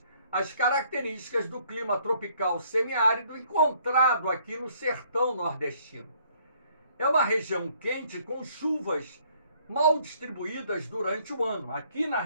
às características do clima tropical semiárido encontrado aqui no sertão nordestino. É uma região quente com chuvas mal distribuídas durante o ano. Aqui na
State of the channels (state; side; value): inverted; both; correlation -0.64